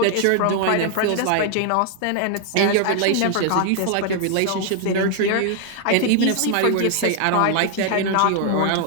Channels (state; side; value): different; both; correlation 0.00